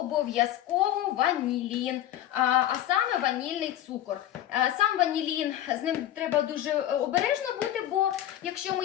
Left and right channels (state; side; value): quieter; right; 12.4 dB